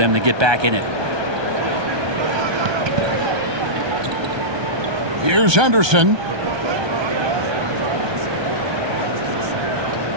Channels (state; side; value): late; left; 1.2 ms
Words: to get back in it. Here's Henderson.